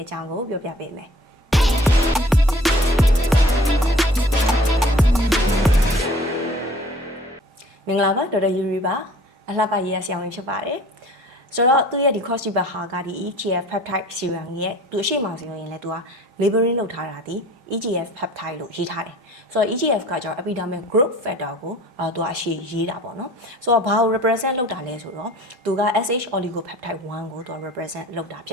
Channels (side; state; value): both; normal; correlation 0.49